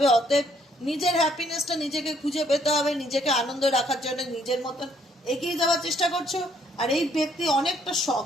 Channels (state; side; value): normal; both; correlation 0.67